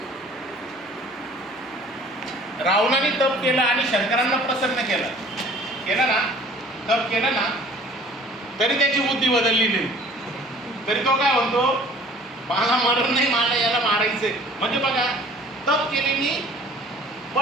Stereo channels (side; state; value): both; normal; correlation 0.50